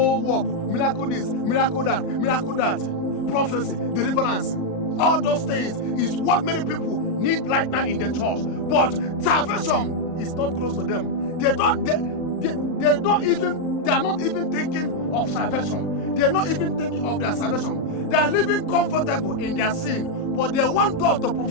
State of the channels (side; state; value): right; late; 38 ms